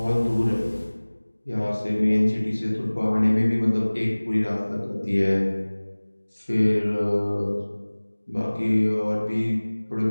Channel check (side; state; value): both; inverted; correlation -1.00